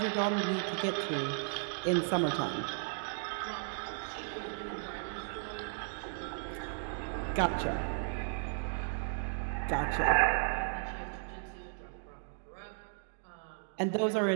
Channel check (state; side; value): silent; left; digital silence